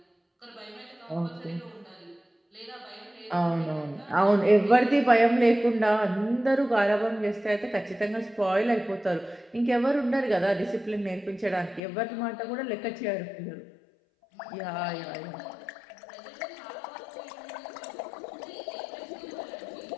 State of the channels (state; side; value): drops out; right; at 11.8 s